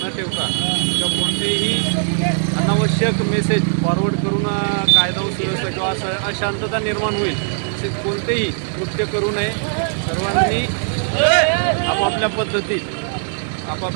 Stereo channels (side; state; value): left; silent; digital silence